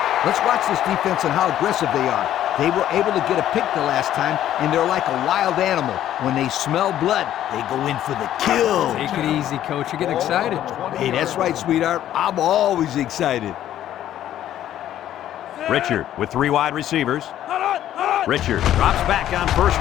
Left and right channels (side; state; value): right; quieter; 11.9 dB